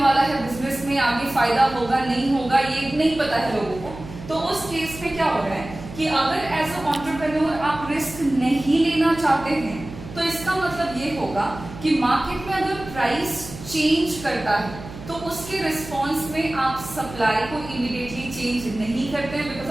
वाला है बिजनेस में, आगे फायदा होगा नहीं होगा ये नहीं पता है लोगों को। तो उस केस में क्या हो रहा है कि अगर एज अ एंटरप्रेन्योर आप रिस्क नहीं लेना चाहते हैं तो इसका मतलब ये होगा कि मार्केट में अगर प्राइस चेंज करता है तो उसके रिस्पॉन्स में आप सप्लाई को इमीडिएटली चेंज नहीं करते हैं, बिकॉज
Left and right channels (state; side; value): noise; right; hum, 14 dB below the sound